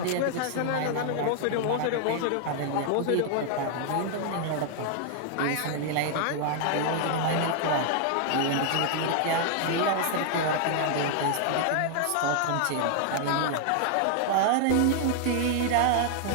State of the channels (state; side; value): different; both; correlation 0.00